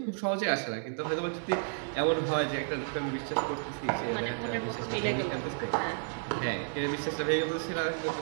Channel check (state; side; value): silent; left; 57 dB below the other